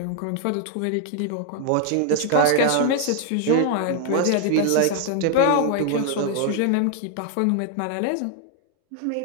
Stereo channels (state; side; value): different; both; correlation 0.00